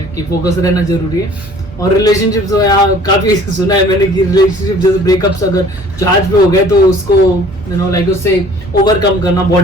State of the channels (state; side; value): normal; both; correlation 0.51